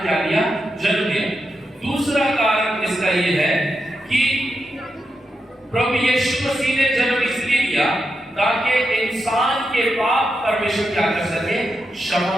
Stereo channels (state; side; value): normal; both; correlation 0.86